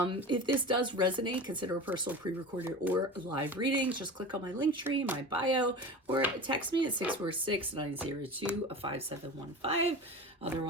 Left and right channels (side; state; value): both; normal; correlation 0.32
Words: this does resonate, consider a personal pre-recorded or live reading. Just click on my link tree, my bio, or text me at 646-902-5715.